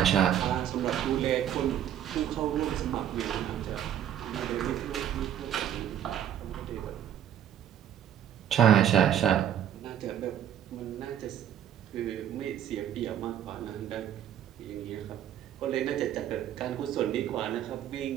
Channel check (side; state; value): left; quieter; 10.5 dB